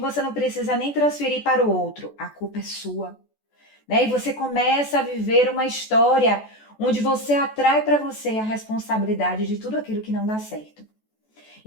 não precisa nem transferir para o outro. A culpa é sua, né? E você começa a viver uma história onde você atrai para você a responsabilidade de tudo aquilo que não dá certo.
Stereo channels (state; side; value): late; right; 14 ms